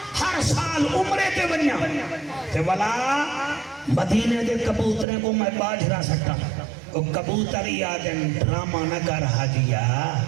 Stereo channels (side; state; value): left; drops out; at 5.1 s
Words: ہر سال عمرے تے بنیا تے والا مدینے دے کبوترے کو میں باجرا سکتا وہ کبوتری یادن ڈرامہ نہ کر حاجیا